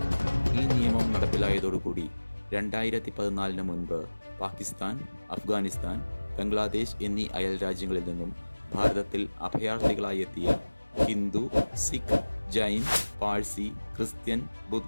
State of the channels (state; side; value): inverted; both; correlation -1.00